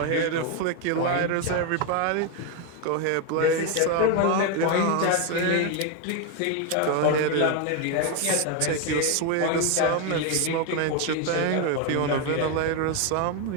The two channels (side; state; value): both; different; correlation 0.01